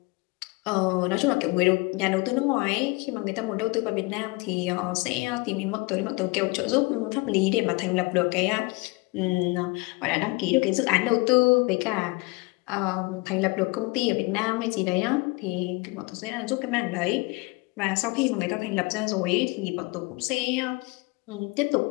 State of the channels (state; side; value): quieter; right; 26.0 dB